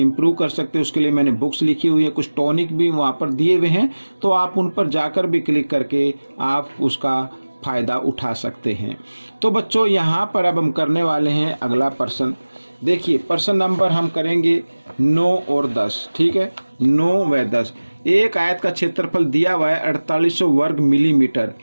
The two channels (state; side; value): inverted; both; correlation -1.00